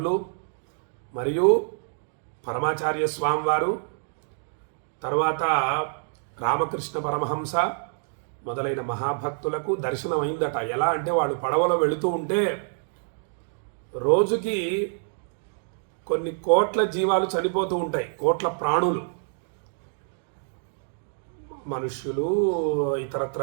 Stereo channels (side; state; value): left; silent; digital silence